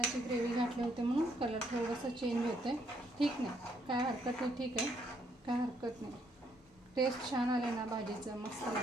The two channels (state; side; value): normal; both; correlation 0.71